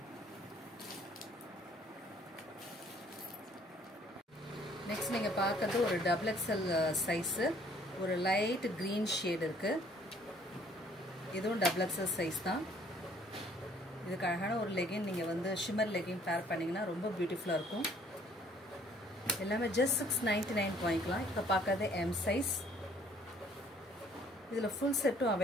நெக்ஸ்ட் நீங்க பார்க்கிறது ஒரு டபுள் எக்ஸ்எல் சைஸ் ஒரு லைட் green ஷேட் இருக்கு இதுவும் டபுள் எக்ஸ்எல் சைஸ் தான் இதுக்கு அழகான ஒரு லெகின் நீங்க வந்து ஷிம்மர் லெகின் பேர் பண்ணீங்கன்னா ரொம்ப பியூட்டிஃபுல்லா இருக்கும் எல்லாமே just 699 வாங்கிக்கலாம் இப்ப பார்க்கிறது M சைஸ் இதுல full செட்டும்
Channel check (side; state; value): both; normal; correlation 0.60